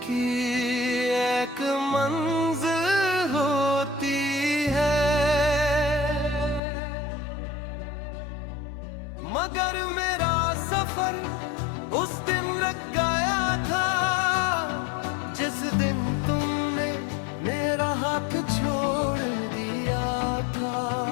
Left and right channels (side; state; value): right; drops out; at 6.6 s